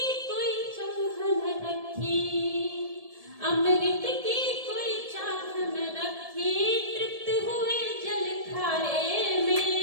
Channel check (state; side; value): late; left; 1.7 ms